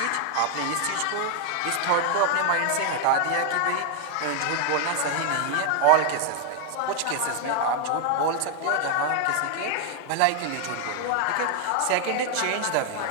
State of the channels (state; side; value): different; both; correlation 0.00